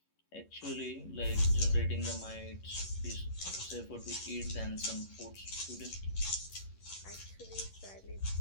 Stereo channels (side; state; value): right; late; 11 ms